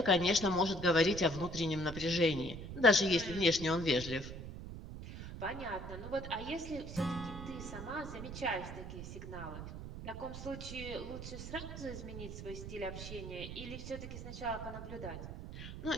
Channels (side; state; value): right; noise; rumble, 9 dB below the sound